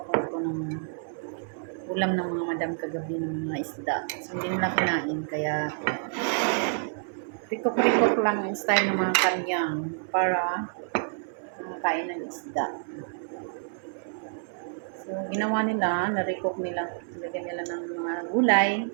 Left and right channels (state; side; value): silent; left; 59 dB below the other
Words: ko ito ng ulam ng mga madam kagabi ng mga isda. So hindi nila kinain kaya recook lang yung style ng mga kanyang para makakain ng isda. So, ginawa nila, na-recook nila, lagyan nila ng mga gulay,